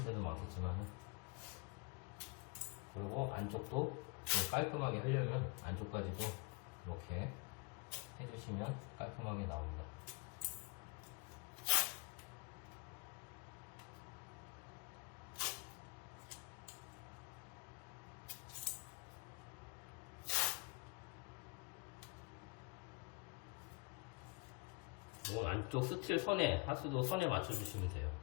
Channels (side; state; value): right; quieter; 29.8 dB